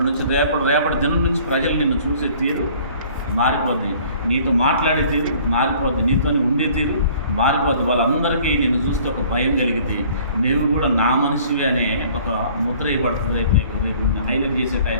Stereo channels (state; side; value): inverted; both; correlation -0.53